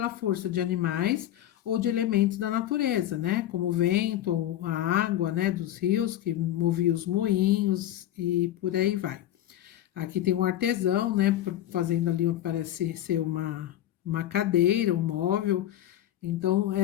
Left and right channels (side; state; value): right; quieter; 12.5 dB